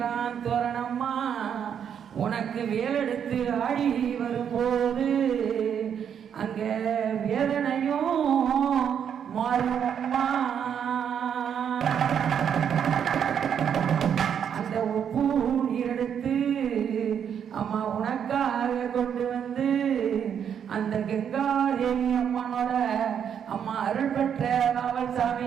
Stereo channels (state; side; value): quieter; left; 8.3 dB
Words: தோரணம்மா. உனக்கு வேலெடுத்து ஆடி வரும்போது அங்க வேதனையும் மாறுமம்மா. அந்த உப்பு நீர் எடுத்து அம்மா உனக்காக கொண்டு வந்து அந்த கங்காதேவி அம்மனோட அம்மா அருள் பெற்ற காவல்